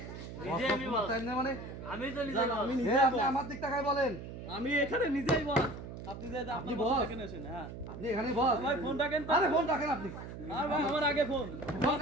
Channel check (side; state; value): right; noise; hum, 10 dB below the sound